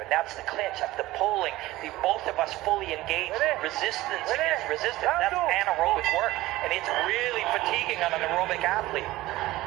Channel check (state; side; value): quieter; left; 17.6 dB